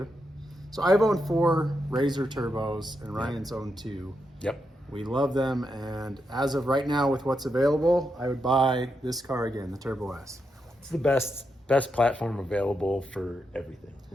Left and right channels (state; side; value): normal; both; correlation 0.84